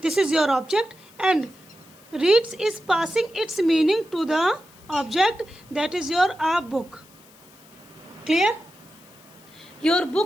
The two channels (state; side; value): noise; left; hiss, 26 dB below the sound